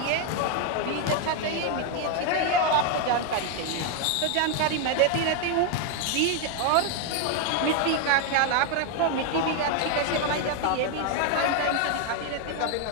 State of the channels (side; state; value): both; different; correlation 0.01